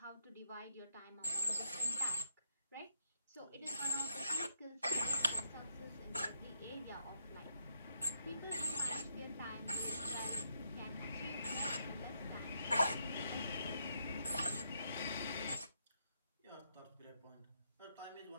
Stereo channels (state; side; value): inverted; both; correlation -0.76